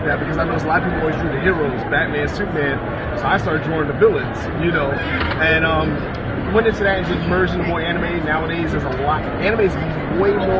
that because I know a lot of people always drew the heroes, Batman, Superman. So I started drawing the villains, you know. And went into that and just merged into more anime. Nowadays there's a lot. Anime is way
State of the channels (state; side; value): identical; both; correlation 1.00